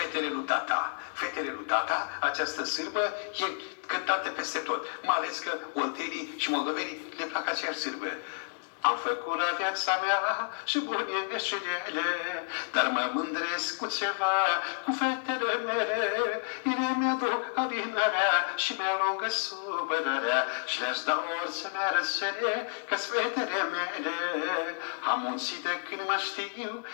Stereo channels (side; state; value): right; silent; digital silence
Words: lui Tata. Fetele lui Tata, această sârbă, e cântată peste tot. Mai ales că oltenii și moldovenii le plac aceeași sârbă. Am făcut la viața mea și bune greșelile, dar mă mândresc cu ceva, cu fetele mele. Ele mi-aduc adinarea și mi-alungă supărarea și le-aș da orice mi-ar cere, că-s fetele mele. Am muncit de când mă știu,